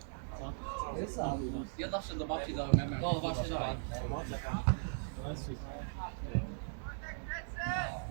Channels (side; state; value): left; silent; digital silence